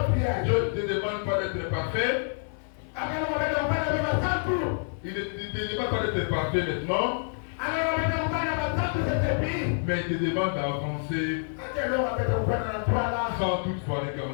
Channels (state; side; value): silent; right; digital silence